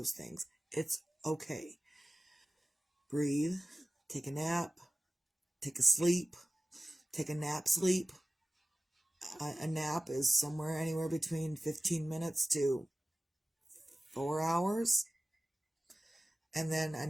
things, it's okay. Breathe, take a nap, take a sleep, take a nap sleep. A nap is somewhere anywhere between 15 minutes to 4 hours. And then a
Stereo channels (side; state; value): both; normal; correlation 0.97